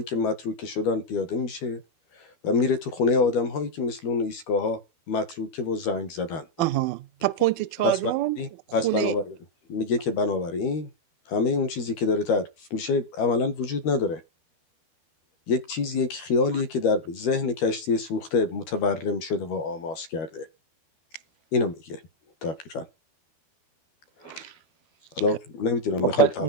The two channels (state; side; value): late; right; 13 ms